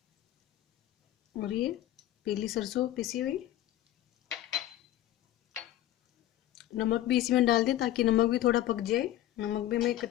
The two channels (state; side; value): quieter; right; 13.6 dB